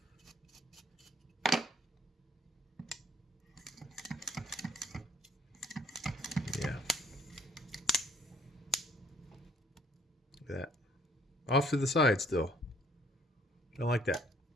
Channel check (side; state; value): both; normal; correlation 0.61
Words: Yeah. Look at that. Off to the side still. Don't like that.